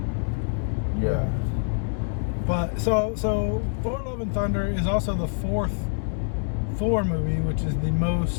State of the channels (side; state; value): right; silent; digital silence